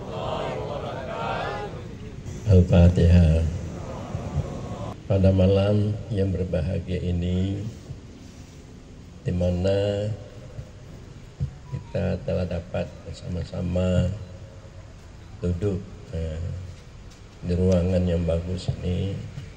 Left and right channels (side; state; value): both; identical; correlation 1.00